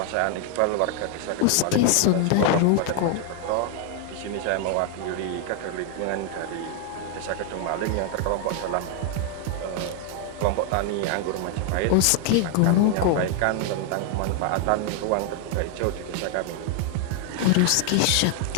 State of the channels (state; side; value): different; both; correlation 0.00